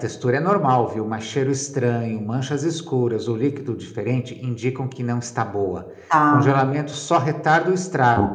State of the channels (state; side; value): identical; both; correlation 1.00